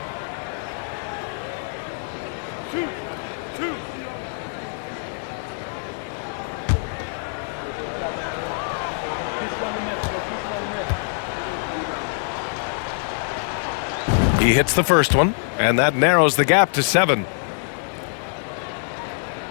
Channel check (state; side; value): silent; right; 58 dB below the other